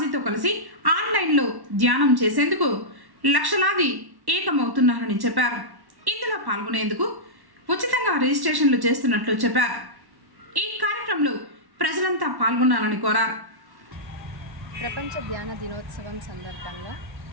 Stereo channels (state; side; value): late; left; 1.1 ms